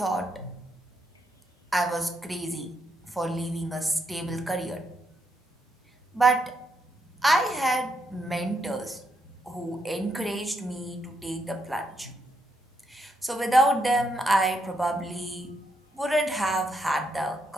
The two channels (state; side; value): normal; both; correlation 0.78